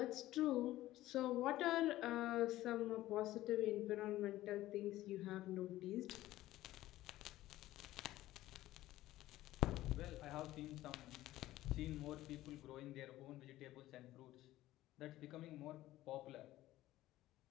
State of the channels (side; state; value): right; quieter; 15.6 dB